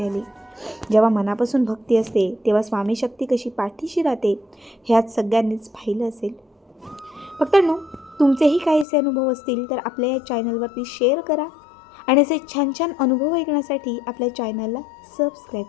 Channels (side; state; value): right; drops out; at 8.8 s